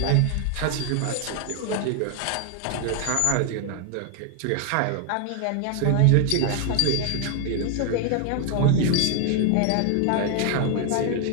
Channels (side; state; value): both; different; correlation 0.00